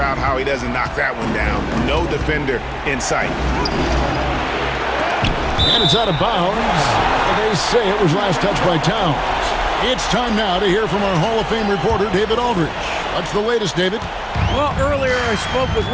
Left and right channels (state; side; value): identical; both; correlation 1.00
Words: how he doesn't knock that one down. No defender in sight. And it's out of bounds. They say it was last touched by Towns. It's time now to hear from our Hall of Fame reporter, David Aldridge. What's the latest, David? Well, earlier I spoke with